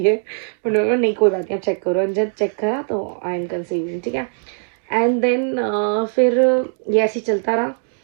है। उन्होंने कहा नहीं कोई बात नहीं, आप चेक करो। जब चेक करा तो आई एम कंसीविंग। ठीक है, एंड देन फिर ये ऐसे ही चलता रहा।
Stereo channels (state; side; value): silent; left; digital silence